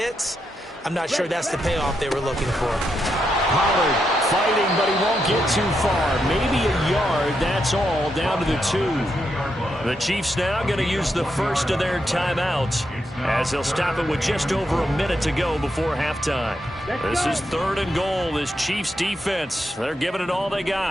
I'm not sure that's the payoff they were looking for. Pollard fighting, but he won't get too far. Maybe a yard, that's all, down to the 2. The Chiefs now going to use the first of their timeouts as they'll stop it with just over a minute to go before halftime. This is 3rd and goal. This Chiefs defense, they're giving it all they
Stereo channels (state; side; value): normal; both; correlation 0.83